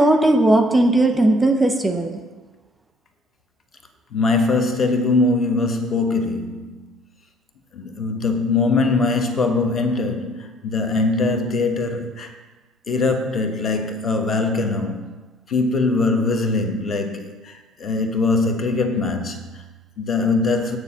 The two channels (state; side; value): normal; both; correlation 0.57